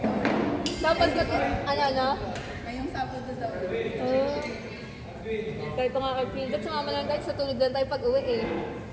Dapat kasi, ano? Ngayong Sabado daw. Oh. Kahit pa nga kay Phil, sumama lang kahit sa tulog lang tayo pag uwi eh.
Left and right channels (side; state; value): both; identical; correlation 1.00